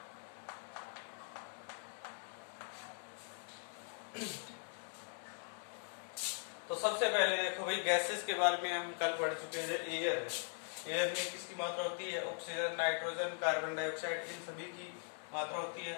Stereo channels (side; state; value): right; silent; 51 dB below the other